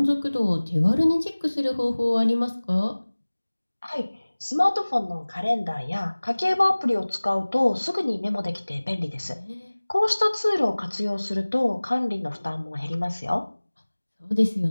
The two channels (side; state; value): both; inverted; correlation -1.00